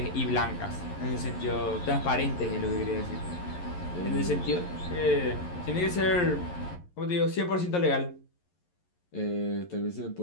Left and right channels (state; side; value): late; right; 11 ms